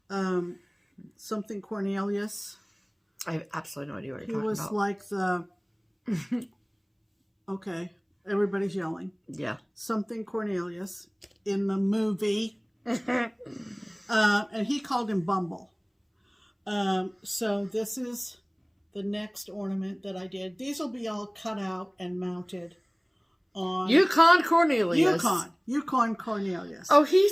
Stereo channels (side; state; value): both; identical; correlation 1.00